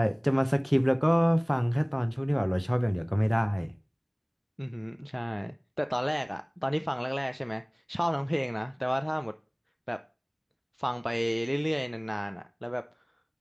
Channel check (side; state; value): both; identical; correlation 1.00